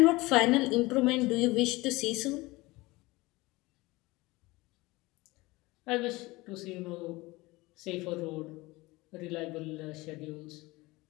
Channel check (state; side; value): quieter; right; 21.5 dB